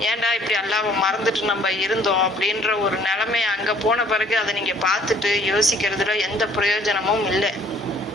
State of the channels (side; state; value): both; normal; correlation 0.58